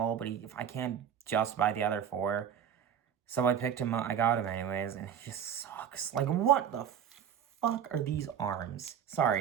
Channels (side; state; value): left; quieter; 8.8 dB